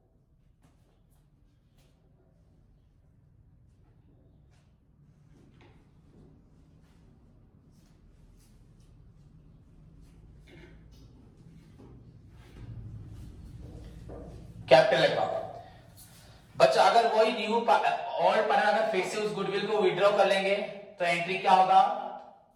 capital account. बच्चा अगर वही न्यू ऑल पार्टनर अगर फिर से उस गुडविल को विड्रॉ कर लेंगे तो एंट्री क्या होगा,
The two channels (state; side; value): identical; both; correlation 1.00